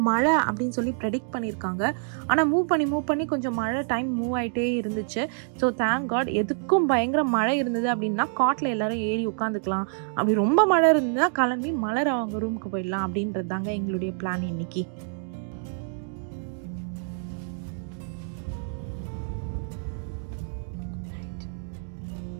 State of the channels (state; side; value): silent; left; digital silence